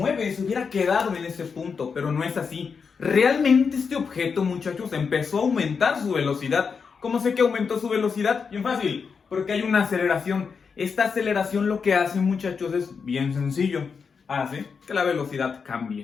se hubiera quedado en ese punto, pero no es así. Realmente este objeto, muchachos, empezó a aumentar su velocidad. ¿Cómo sé que aumentó su velocidad? Bien fácil, porque hay una aceleración. Esta aceleración lo que hace, muchachos, es bien sencillo. Hace que la velocidad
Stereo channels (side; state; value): right; quieter; 5.7 dB